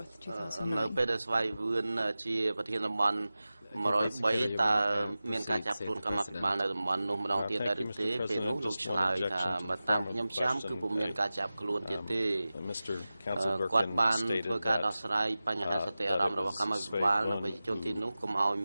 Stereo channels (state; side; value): inverted; both; correlation -0.96